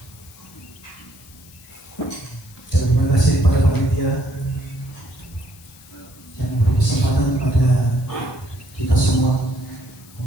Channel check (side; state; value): left; noise; hiss, 23 dB below the sound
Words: Dan terima kasih pada panitia yang memberi kesempatan pada kita semua